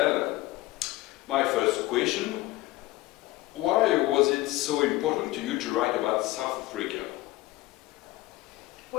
My first question, why was it so important to you to write about South Africa?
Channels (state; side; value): quieter; right; 18.3 dB